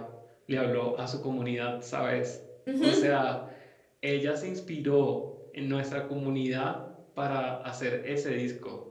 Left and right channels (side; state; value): both; identical; correlation 1.00